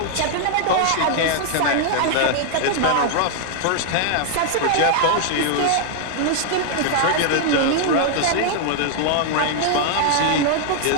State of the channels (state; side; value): different; both; correlation 0.00